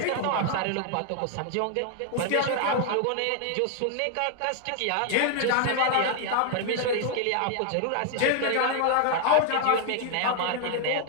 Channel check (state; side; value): different; both; correlation 0.00